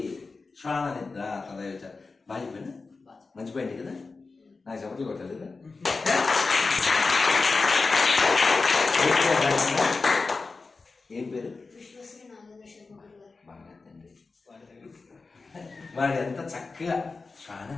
శ్వాన నిద్ర తదైవచ. బాగా చెప్పండి, మంచి పాయింట్ కదా, నాకు చెప్పట్లు కొట్టాలి కదా. ఏం పేరు? బాగా తండ్రి. వాడు ఎంత చక్కగా శ్వాన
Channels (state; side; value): quieter; right; 4.1 dB